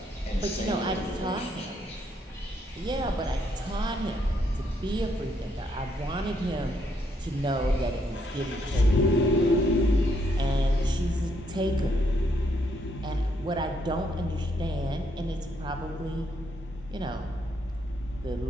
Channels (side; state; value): both; normal; correlation 0.74